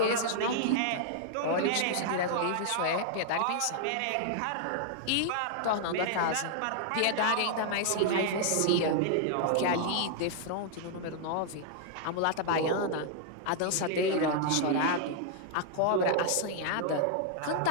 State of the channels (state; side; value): different; both; correlation -0.01